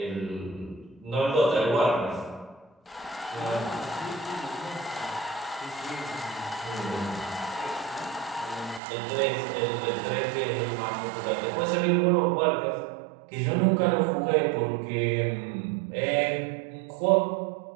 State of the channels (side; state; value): left; drops out; at 8.8 s